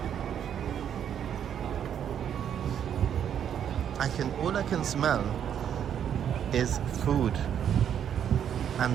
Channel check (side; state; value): left; quieter; 9.1 dB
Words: All I can smell is food,